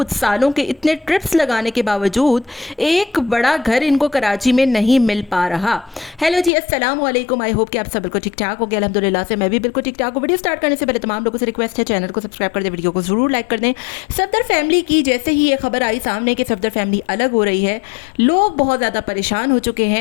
सालों के इतने ट्रिप्स लगाने के बावजूद एक बड़ा घर इनको कराची में नहीं मिल पा रहा? हेलो जी, अस्सलाम वालेकुम। आई होप कि आप सब बिल्कुल ठीक ठाक हो गया। अल्हम्दुलिल्लाह से मैं भी बिल्कुल ठीक ठाक हूँ। वीडियो स्टार्ट करने से पहले तमाम लोगों से रिक्वेस्ट है, चैनल को सब्सक्राइब कर दें, वीडियो को जरूर लाइक कर दें। सफदर फैमिली की जैसे ही ये खबर आई सामने कि सफदर फैमिली अलग हो रही है, लोग बहुत ज़्यादा परेशान हो चुके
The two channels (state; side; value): drops out; right; at 6.5 s